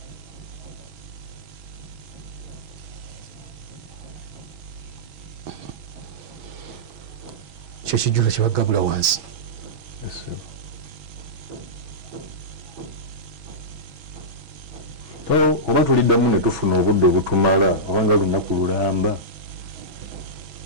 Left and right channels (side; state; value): left; late; 6.1 ms